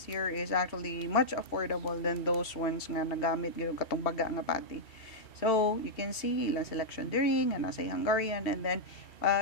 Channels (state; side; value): late; right; 2.7 ms